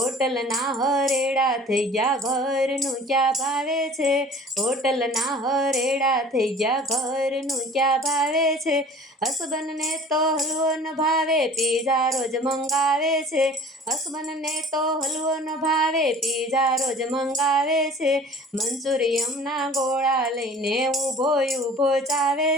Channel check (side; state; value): both; normal; correlation 0.46